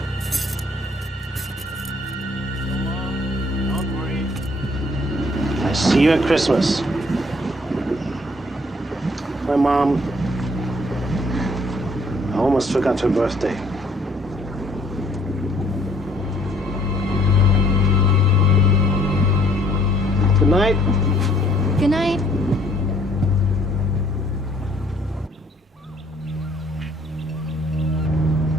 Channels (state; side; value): normal; both; correlation 0.62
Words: I see you at Christmas. My mom, I almost forgot her birthday. Good night. Good night.